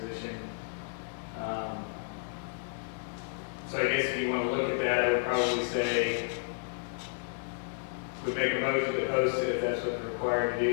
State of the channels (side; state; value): right; silent; digital silence